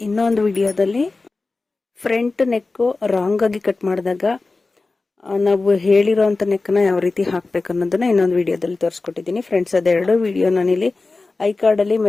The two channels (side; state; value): right; quieter; 3.6 dB